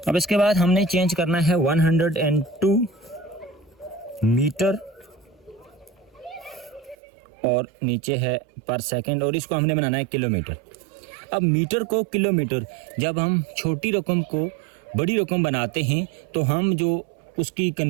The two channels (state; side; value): drops out; left; at 7.0 s